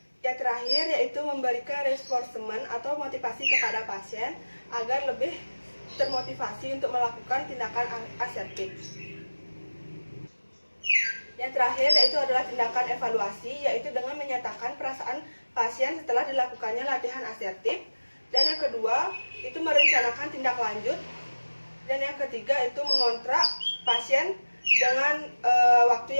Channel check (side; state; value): both; inverted; correlation -1.00